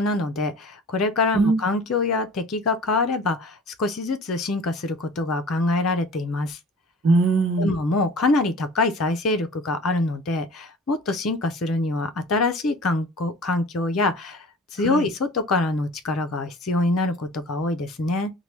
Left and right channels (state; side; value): normal; both; correlation 0.44